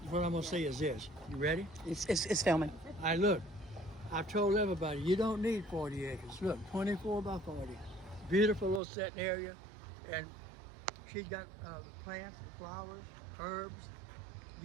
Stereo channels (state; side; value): drops out; left; at 8.8 s